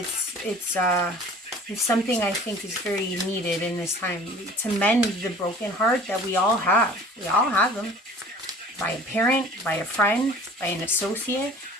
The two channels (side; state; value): both; normal; correlation 0.47